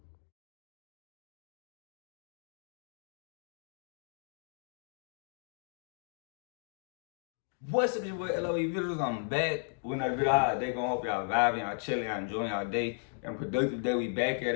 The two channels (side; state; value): right; silent; digital silence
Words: What's up, your boy LOE Visuals? I'm back with another video. How they gonna hope y'all vibing, y'all chilling, y'all enjoying y'all day. And productive day. We back at